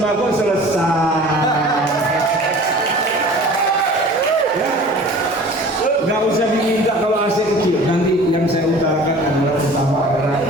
selesai. Ya. Gak usah diminta kalau AC kecil. Nanti yang saya utarakan adalah utama adalah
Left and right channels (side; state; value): both; normal; correlation 0.44